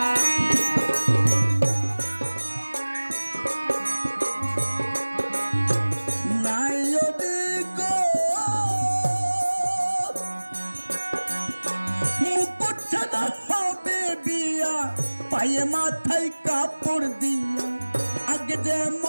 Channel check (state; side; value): inverted; both; correlation -1.00